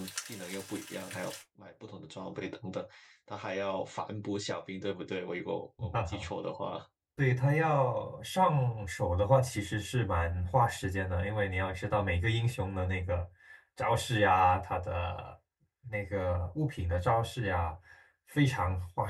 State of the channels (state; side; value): identical; both; correlation 1.00